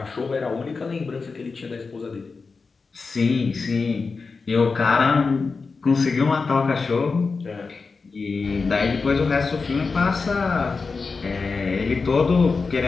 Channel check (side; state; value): right; quieter; 4.5 dB